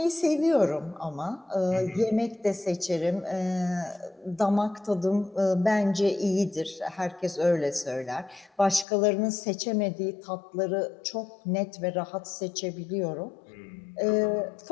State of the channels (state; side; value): drops out; right; at 8.8 s